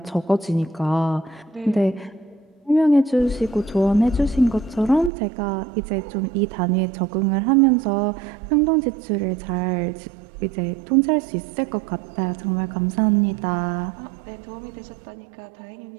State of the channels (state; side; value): drops out; left; at 5.1 s